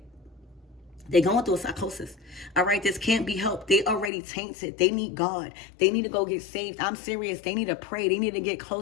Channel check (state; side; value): drops out; right; at 4.1 s